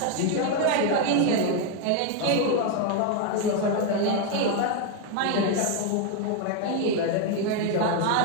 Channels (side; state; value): both; different; correlation 0.01